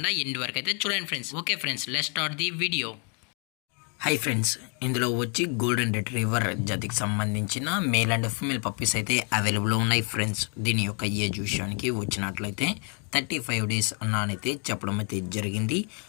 ఎండ్ వరకు అయితే చూడండి friends. Okay friends, let's start the video. Hi friends, ఇందులో వచ్చి గోల్డెన్ రిట్రీవర్ జాతికి సంబంధించిన మేల్ అండ్ ఫీమేల్ పప్పీస్ అయితే అవైలబుల్లో ఉన్నాయి ఫ్రెండ్స్. దీని యొక్క ఏజ్ విషయానికి వచ్చినట్లయితే 35 days అన్నానైతే చెప్పడం అయితే జరిగింది.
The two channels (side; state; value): right; quieter; 38.1 dB